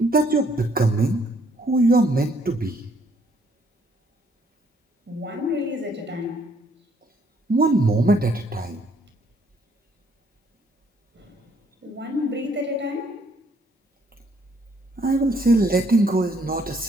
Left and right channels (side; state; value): both; normal; correlation 0.67